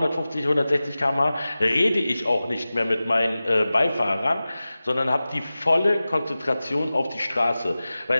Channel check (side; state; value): both; inverted; correlation -0.96